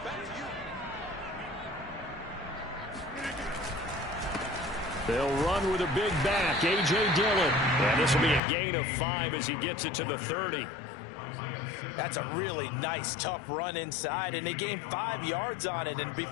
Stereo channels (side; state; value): right; drops out; at 8.4 s